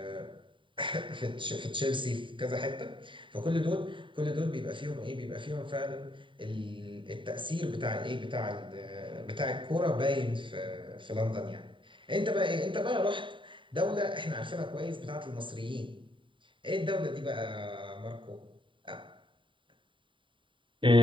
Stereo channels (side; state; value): left; late; 0.24 ms